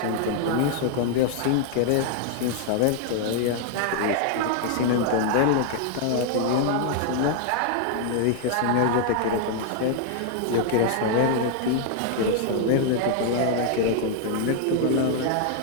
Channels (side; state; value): both; different; correlation 0.00